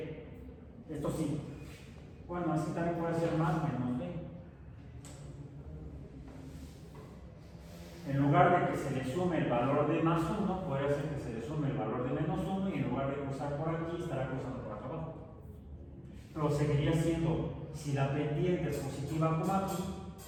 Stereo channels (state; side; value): identical; both; correlation 1.00